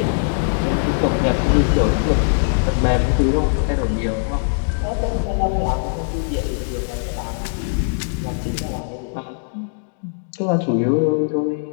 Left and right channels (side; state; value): right; silent; digital silence